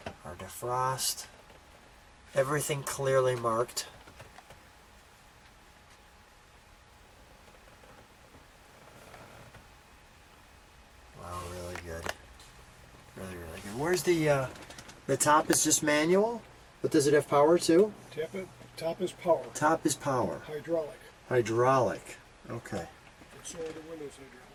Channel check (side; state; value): both; identical; correlation 1.00